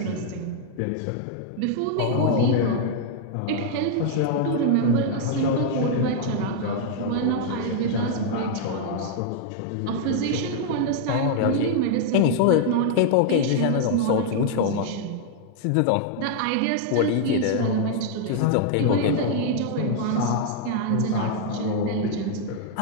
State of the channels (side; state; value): both; different; correlation 0.00